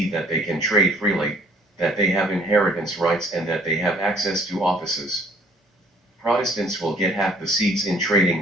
that they can trade freely, that they have inheritance rights, and that they have access to offices. Protestants will get half the seats in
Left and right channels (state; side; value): normal; both; correlation 0.58